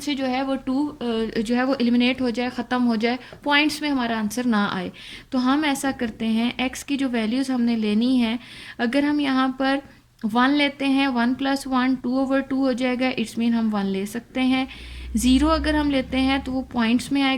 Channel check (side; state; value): both; identical; correlation 1.00